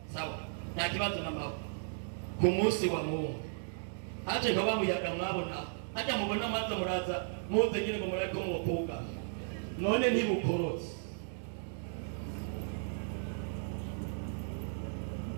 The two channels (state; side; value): silent; left; digital silence